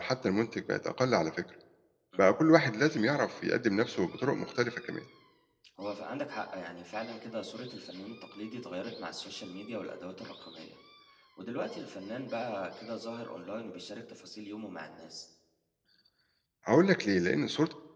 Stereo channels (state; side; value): identical; both; correlation 1.00